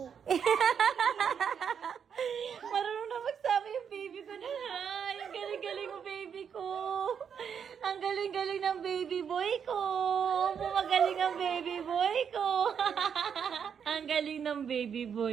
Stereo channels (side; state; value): left; quieter; 7.4 dB